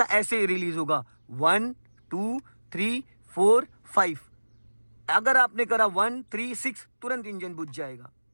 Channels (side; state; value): both; inverted; correlation -1.00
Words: ऐसे रिलीज होगा, 1 2 3 4 5। अगर आपने करा 1 3 6, तुरंत इंजन बुझ जाएगा।